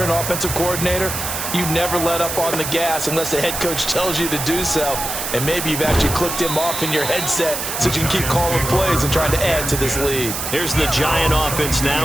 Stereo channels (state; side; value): noise; right; hiss, 4 dB below the sound